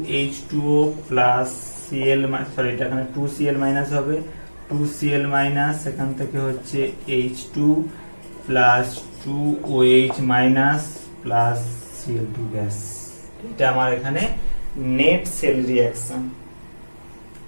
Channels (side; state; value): both; inverted; correlation -1.00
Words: প্লাস Cl, সরি এটা এখানে 2Cl মাইনাস হবে, 2Cl মাইনাস এখান থেকে হচ্ছে H2 plus 2OH minus plus Cl2 gas. এটা আমার এখানে নেট সেল রিঅ্যাকশন।